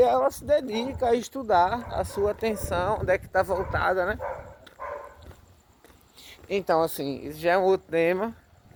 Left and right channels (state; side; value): identical; both; correlation 1.00